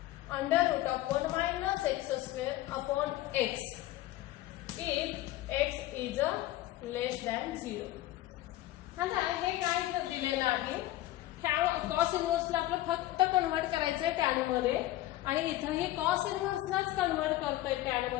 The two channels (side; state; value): right; quieter; 15.7 dB